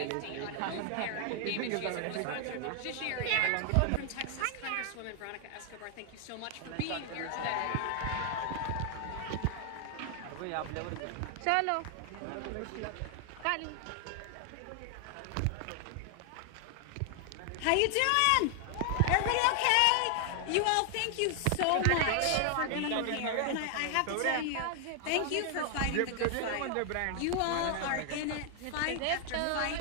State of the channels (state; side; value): different; both; correlation 0.00